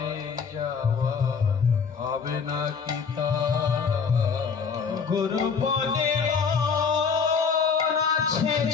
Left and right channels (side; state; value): right; quieter; 5.9 dB